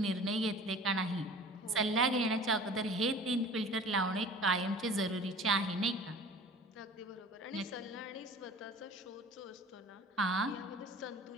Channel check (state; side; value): normal; both; correlation 0.44